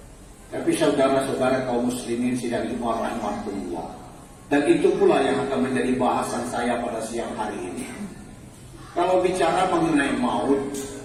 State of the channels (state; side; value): identical; both; correlation 1.00